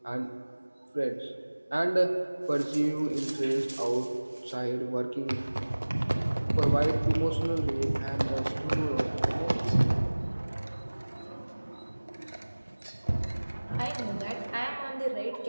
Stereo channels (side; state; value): both; inverted; correlation -1.00